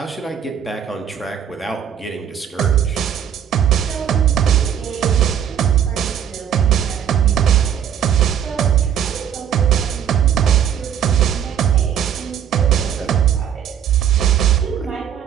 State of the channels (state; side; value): quieter; left; 9.0 dB